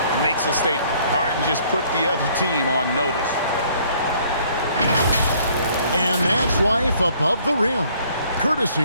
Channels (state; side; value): inverted; both; correlation -0.61